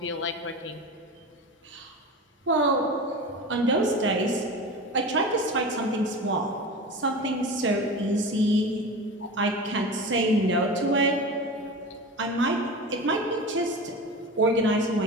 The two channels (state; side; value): normal; both; correlation 0.30